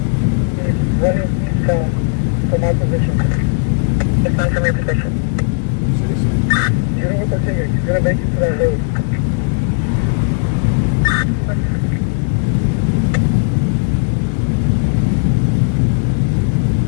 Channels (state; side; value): silent; right; 60 dB below the other